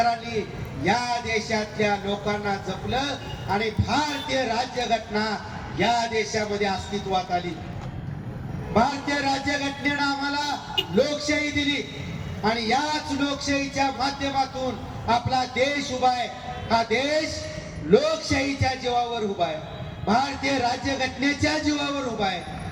या देशातल्या लोकांना जपलं आणि भारतीय राज्यघटना या देशामध्ये अस्तित्वात आली. भारतीय राज्यघटनेनं आम्हाला लोकशाही दिली आणि याच लोकशाहीच्या माध्यमातून आपला देश उभा आहे. हा देश लोकशाहीच्या जीवावर उभा आहे, भारतीय राज्यघटनेच्या जीवावर उभा आहे.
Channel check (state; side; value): identical; both; correlation 1.00